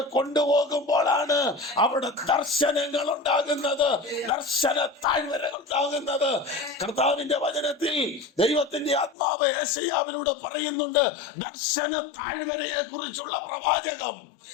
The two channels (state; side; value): drops out; right; at 9.2 s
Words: കൊണ്ടുപോകുമ്പോഴാണ് അവിടെ ദർശനങ്ങൾ ഉണ്ടാകുന്നത്, ദർശന താഴ്വരകൾ ഉണ്ടാകുന്നത്. കർത്താവിന്റെ വചനത്തിൽ ദൈവത്തിന്റെ ആത്മാവ് യെശയ്യാവിലൂടെ പറയുന്നുണ്ട് ദർശന താഴ്വരയെ കുറിച്ചുള്ള പ്രവാചകം.